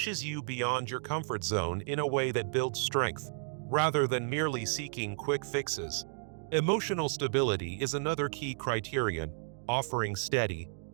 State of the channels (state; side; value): silent; left; digital silence